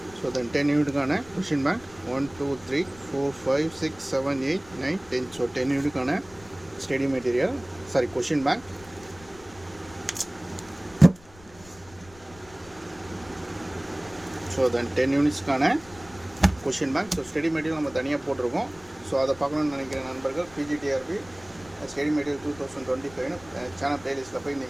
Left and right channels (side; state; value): left; noise; rumble, 22 dB below the sound